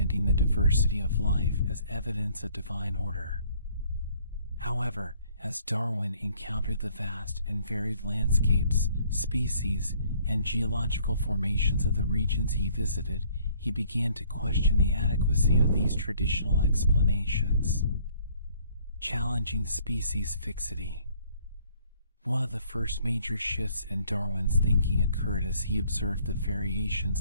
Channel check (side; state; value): both; inverted; correlation -0.61